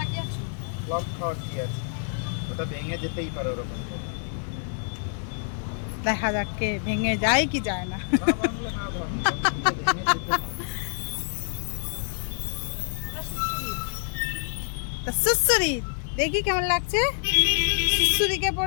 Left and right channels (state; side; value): silent; right; digital silence